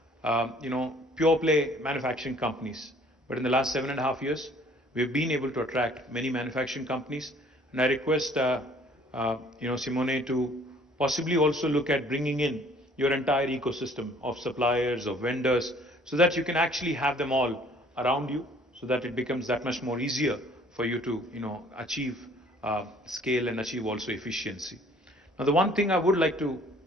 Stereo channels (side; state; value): both; normal; correlation 0.56